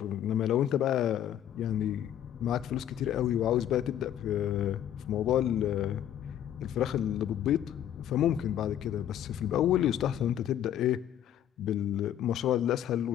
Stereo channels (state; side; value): quieter; right; 10.8 dB